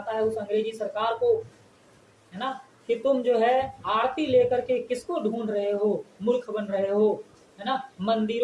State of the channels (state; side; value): identical; both; correlation 1.00